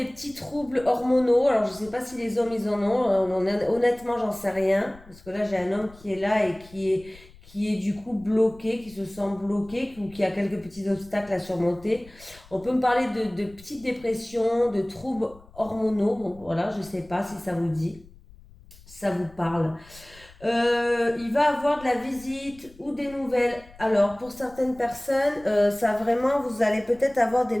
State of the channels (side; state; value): left; noise; rumble, 23 dB below the sound